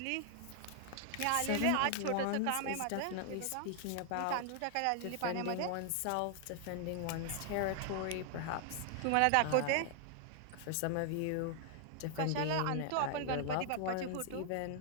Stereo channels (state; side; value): different; both; correlation 0.00